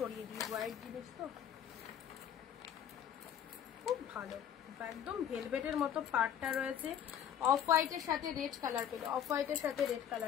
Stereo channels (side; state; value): right; quieter; 9.4 dB